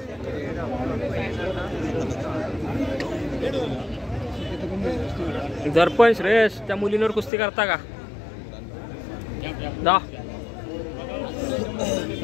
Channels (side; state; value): right; drops out; at 7.3 s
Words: दर्पण श्रेयस त्या मुलींवर कुस्ती करता का? दा